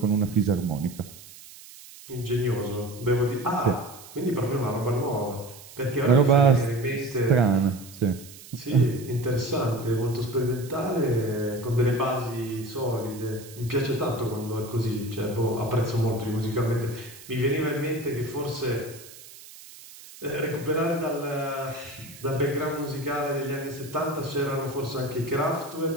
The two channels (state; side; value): noise; right; hiss, 18 dB below the sound